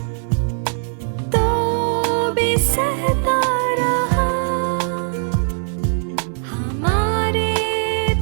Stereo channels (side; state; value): left; silent; 66 dB below the other